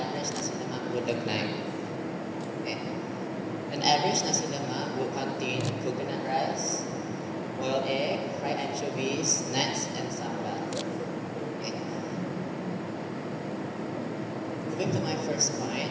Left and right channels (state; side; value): identical; both; correlation 1.00